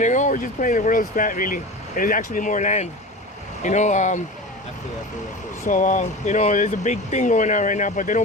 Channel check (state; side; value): normal; both; correlation 0.31